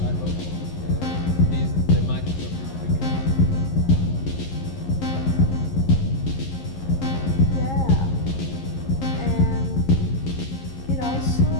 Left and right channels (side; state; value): right; late; 11 ms